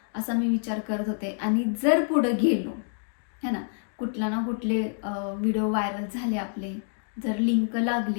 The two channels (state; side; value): silent; right; digital silence